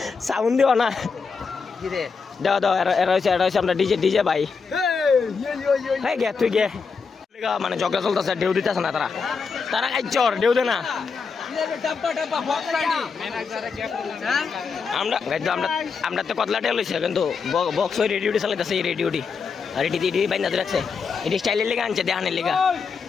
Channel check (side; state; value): right; quieter; 5.3 dB